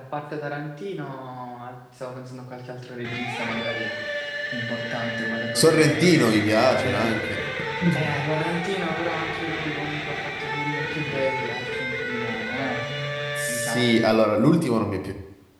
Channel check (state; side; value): identical; both; correlation 1.00